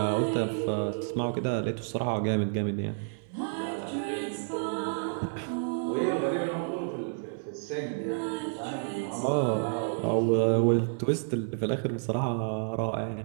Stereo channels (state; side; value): silent; left; 58 dB below the other